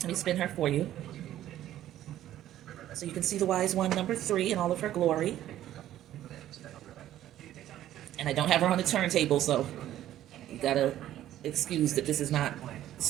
me spin her for you. So you can see the wise one, number 3, in all of her glory. And I don't have her on the turntable, so you got to excuse that this is not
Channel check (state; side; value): quieter; left; 12.7 dB